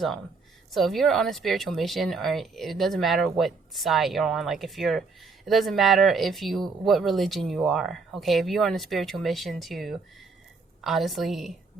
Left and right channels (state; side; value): quieter; left; 4.4 dB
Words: So if you're on a spiritual mission, or it doesn't matter what side you're on, like if you're, it doesn't matter if you, what religion you are, okay? If you're on a spiritual mission to honestly